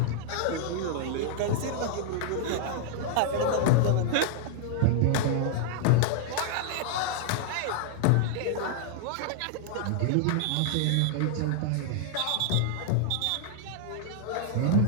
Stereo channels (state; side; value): different; both; correlation -0.01